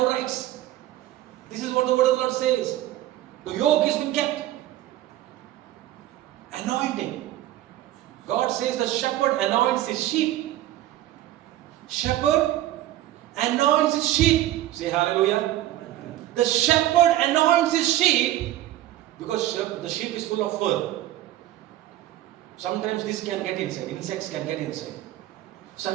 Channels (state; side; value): quieter; left; 14.3 dB